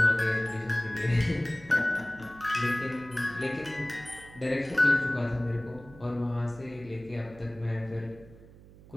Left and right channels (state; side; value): noise; right; hum, 21 dB below the sound